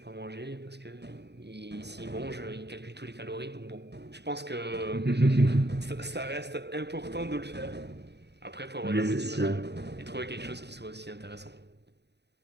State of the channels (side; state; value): left; late; 0.49 ms